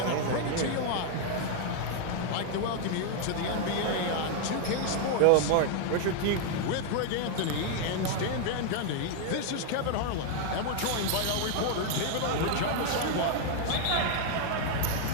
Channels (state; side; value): different; both; correlation 0.00